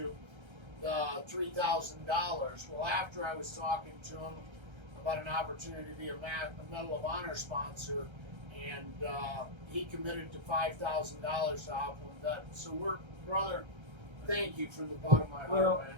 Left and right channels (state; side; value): late; left; 1.3 ms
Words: The $3,000. Well, after I was talking to him about an opportunity to be a Medal of Honor sponsor, and he committed to $5,000 to OP1VET. So brother, thank you from the bottom of my heart, man.